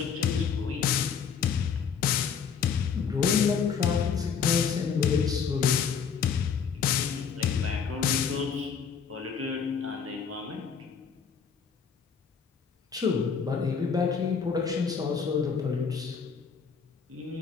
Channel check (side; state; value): right; quieter; 6.6 dB